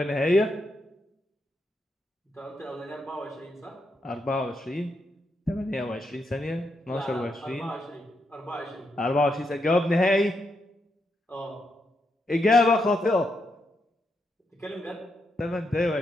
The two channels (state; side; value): normal; both; correlation 0.82